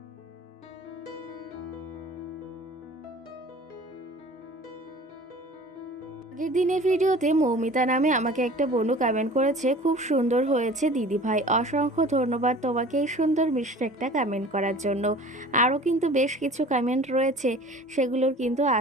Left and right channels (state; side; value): normal; both; correlation 0.44